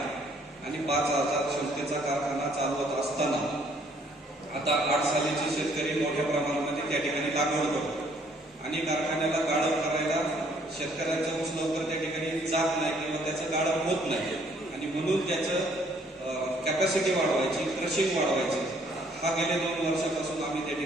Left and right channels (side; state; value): both; normal; correlation 0.64